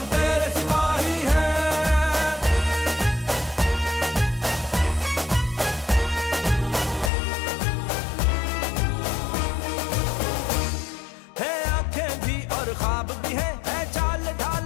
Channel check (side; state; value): right; drops out; at 7.1 s